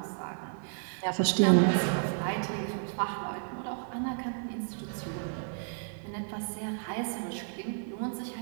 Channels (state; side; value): silent; left; digital silence